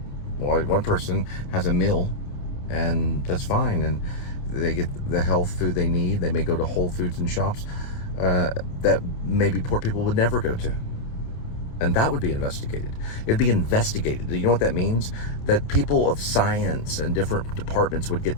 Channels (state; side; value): late; right; 28 ms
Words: Well, one person has a meal and that's fine. And they get the health food they need. They may go to Whole Foods and shops that maybe poor people would never go to. And that would be investigated. It'd be investigated. You know what that means? That people of science and different departments would